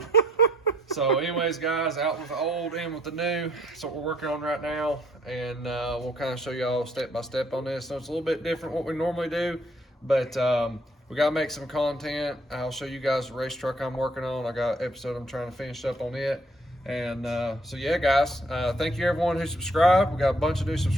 So anyways, guys, out with the old, in with the new. That's what we're working on right now. And we'll kind of show y'all step by step on this. So it's a little bit different what we normally do, but we got to make some content. I'll show you guys the race truck I'm working on. I got an episode I'm trying to finish up on it. And so yeah, guys, thank you everyone who subscribed. We got a bunch of new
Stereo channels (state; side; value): normal; both; correlation 0.65